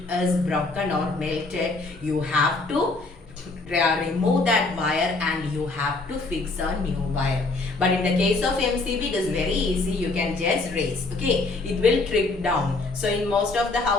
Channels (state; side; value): quieter; right; 3.4 dB